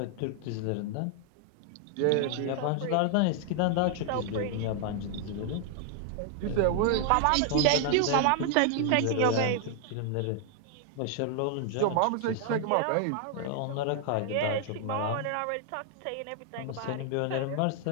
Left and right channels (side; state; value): both; different; correlation 0.00